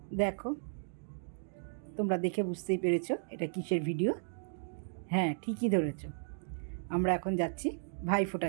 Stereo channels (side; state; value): left; silent; digital silence